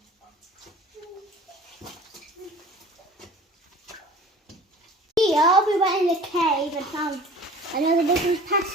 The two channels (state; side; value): normal; both; correlation 0.44